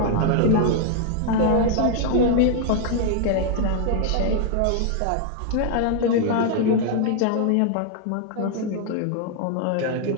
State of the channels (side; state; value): both; different; correlation 0.00